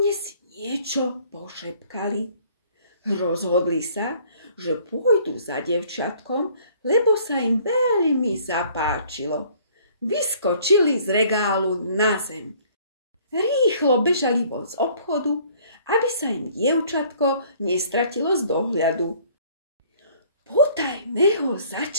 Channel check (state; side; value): inverted; both; correlation -0.56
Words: si niečo pošepkali. Rozhodli sa, že pôjdu za dievčatkom, lebo sa im veľmi zapáčilo. Vyskočili z regálu na zem. Rýchlo bežali von z obchodu, aby sa im dievčatko nestratilo z dohľadu. Potajme ho